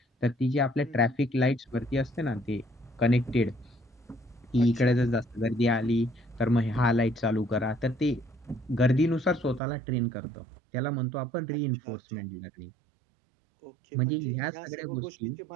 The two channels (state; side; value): drops out; left; at 9.6 s